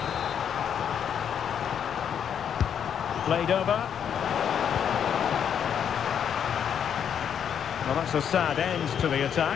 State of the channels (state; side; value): quieter; right; 8.3 dB